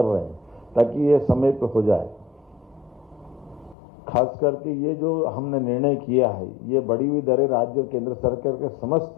रहे हैं, ताकि ये समय पर हो जाए। खास करके ये जो हमने निर्णय किया है, ये बढ़ी हुई दरें राज्य और केंद्र सरकार के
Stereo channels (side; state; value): right; drops out; at 3.8 s